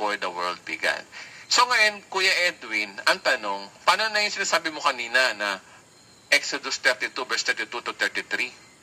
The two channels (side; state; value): both; identical; correlation 1.00